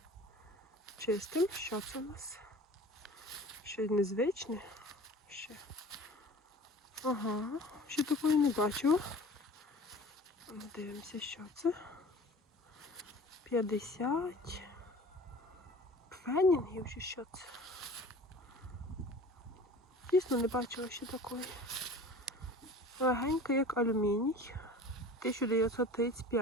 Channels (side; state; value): both; normal; correlation 0.42